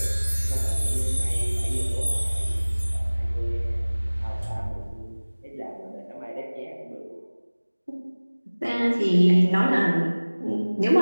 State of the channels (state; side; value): inverted; both; correlation -1.00